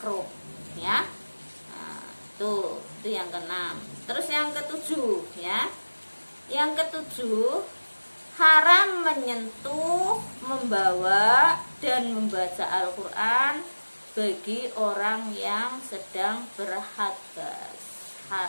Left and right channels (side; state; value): both; inverted; correlation -1.00